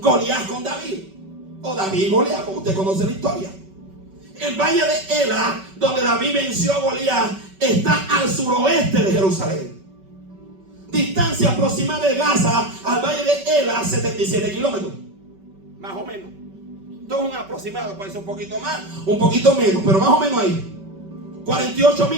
con David, o David y Goliat, como usted conoce la historia. El valle de Ela, donde David venció a Goliat, está al suroeste de Jerusalén. Distancia aproximada de Gaza al valle de Ela, 77 kilómetros, más o menos. Esto es un aproximado, puede ser un poquito más, un poquito menos, pero más o menos ahí. 48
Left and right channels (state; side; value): late; left; 5.2 ms